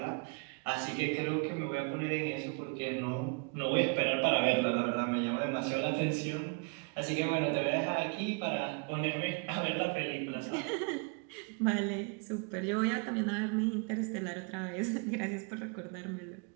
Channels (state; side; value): quieter; left; 34.3 dB